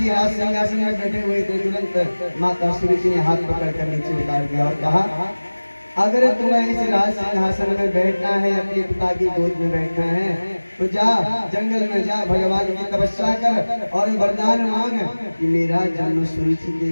राज सिंहासन में बैठे हुए थे। तुरंत माता सुरुचि ने हाथ पकड़कर नीचे उतार दिया और कहा, अगर तुम्हें इस राज सिंहासन में बैठना है, अपने पिता की गोद में बैठना है, तो जा जंगल में जा, भगवान की तपस्या कर और वरदान मांग कि मेरा जन्म सुरुचि के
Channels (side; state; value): both; inverted; correlation -1.00